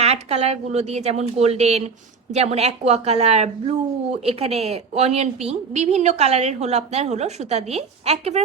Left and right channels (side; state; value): left; quieter; 5.2 dB